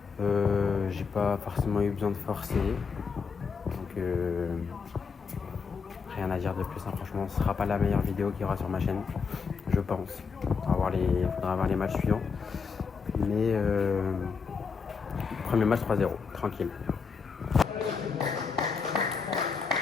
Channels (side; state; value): right; quieter; 5.5 dB